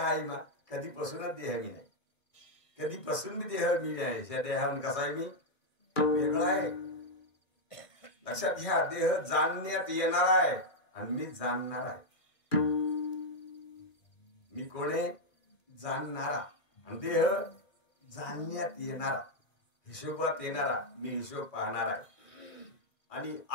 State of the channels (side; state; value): right; late; 2.4 ms